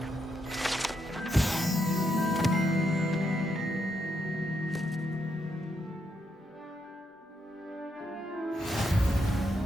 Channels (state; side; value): normal; both; correlation 0.80